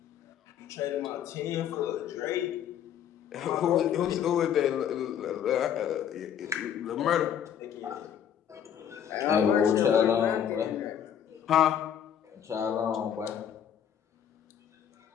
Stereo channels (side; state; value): right; quieter; 9.1 dB